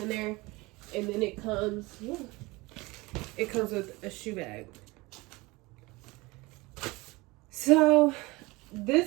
there. And then it comes with a shoe bag. So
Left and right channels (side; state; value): left; quieter; 23.0 dB